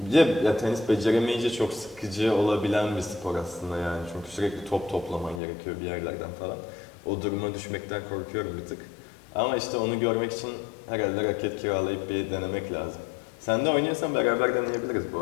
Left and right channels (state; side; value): drops out; right; at 5.4 s